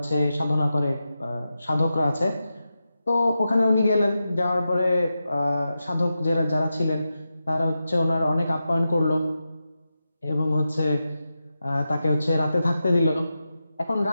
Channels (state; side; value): inverted; both; correlation -0.90